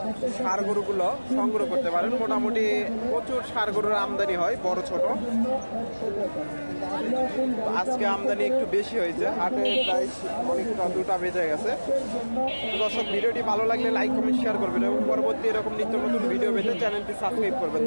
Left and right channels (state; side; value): inverted; both; correlation -1.00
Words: ষাঁড় গরুগুলো সংগ্রহ করতে পারেন। মোটামুটি প্রচুর ষাঁড় গরুর আমদানি হয়, বড় ছোট। আজকে আমদানি একটু বেশি হয়েছে, হাটে প্রায় অনেকটা 2টা বেজে গেছে। দর্শক ভিডিওটি ভালো লাগলে লাইক কমেন্ট শেয়ার করবেন এবং পরবর্তী এরকম নিত্য নতুন ভিডিও পেতে চ্যানেলটি সাবস্ক্রাইব করবেন।